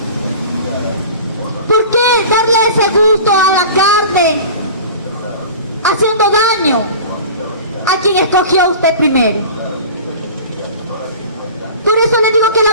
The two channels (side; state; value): both; inverted; correlation -0.38